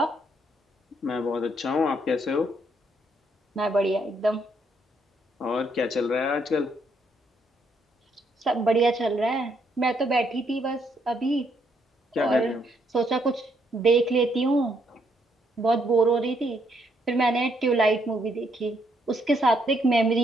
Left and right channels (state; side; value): normal; both; correlation 0.73